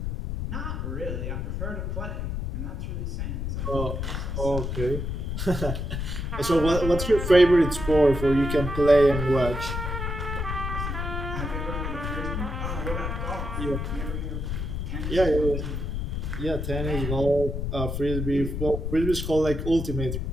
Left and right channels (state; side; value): noise; left; rumble, 3 dB below the sound